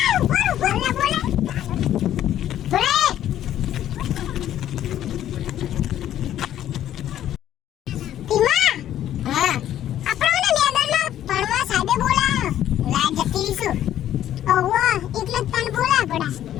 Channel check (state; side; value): quieter; right; 11.7 dB